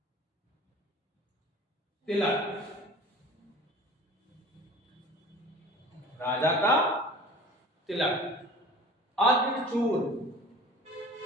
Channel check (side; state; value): both; normal; correlation 0.42